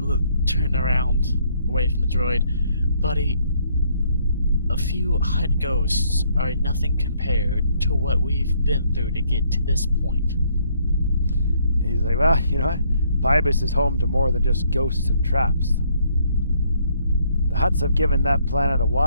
turn around away from the droid. Buddy, a few hut ghosts are nothing compared to what we've been through to get to this point. And he's like, "Well, you know what? Pybus is home to more than just ghosts and traps. The Hutts have given that planet a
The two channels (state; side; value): inverted; both; correlation -0.68